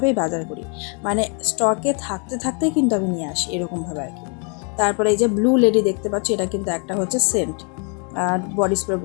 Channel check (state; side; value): quieter; right; 37.3 dB